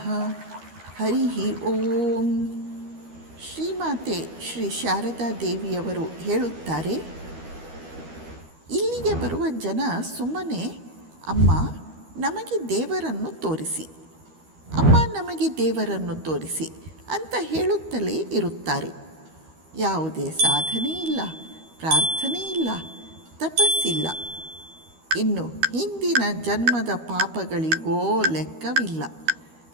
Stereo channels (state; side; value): late; left; 13 ms